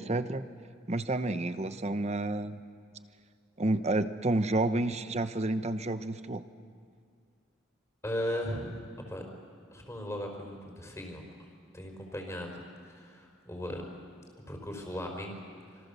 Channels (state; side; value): normal; both; correlation 0.65